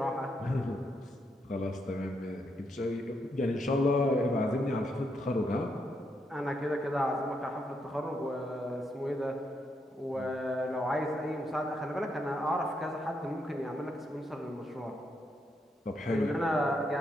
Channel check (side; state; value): both; normal; correlation 0.79